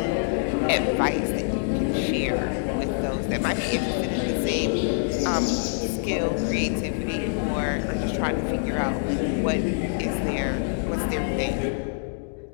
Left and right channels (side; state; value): right; silent; digital silence